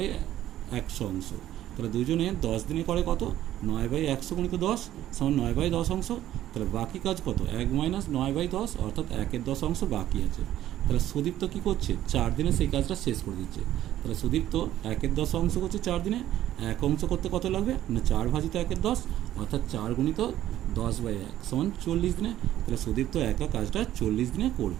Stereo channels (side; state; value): left; quieter; 12.8 dB